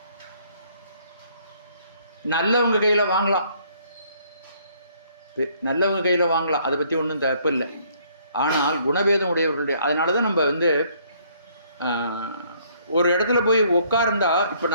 நல்லவங்க கையில் வாங்கலாம், நல்லவங்க கையில் வாங்கலாம், அதை பற்றி ஒன்றும் தப்பு இல்லை. ஆனால் குணபேதம் உடையவர்களுடைய, அதனால தான் நம்ம வந்து ஒரு இடத்துல போய் உட்கார்ந்தா, இப்போ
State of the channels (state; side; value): inverted; both; correlation -0.64